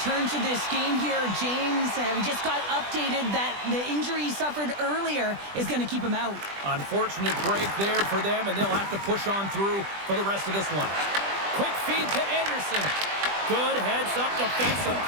to this game here, James. We just got updated that the injury he suffered earlier is going to keep him out. Unfortunate break there for them, and they'll have to push on through for the rest of this one. Quick feed to Anderson. Good heads-up defensive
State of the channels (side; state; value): left; late; 20 ms